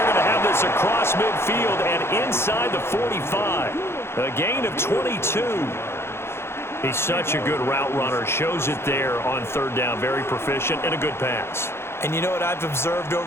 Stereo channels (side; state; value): right; late; 0.12 ms